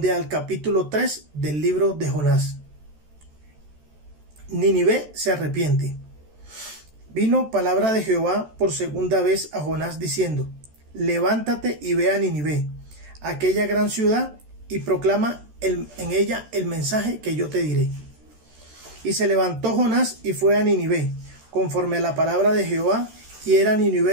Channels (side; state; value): left; late; 13 ms